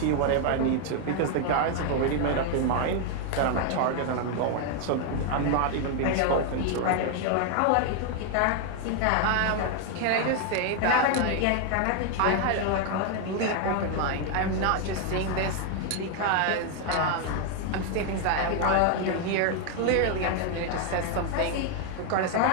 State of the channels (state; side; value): different; both; correlation 0.00